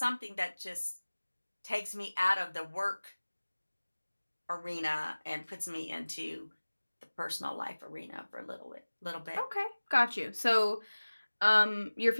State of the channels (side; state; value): both; inverted; correlation -1.00